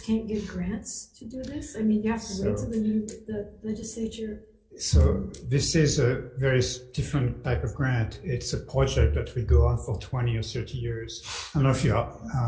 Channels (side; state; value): both; identical; correlation 1.00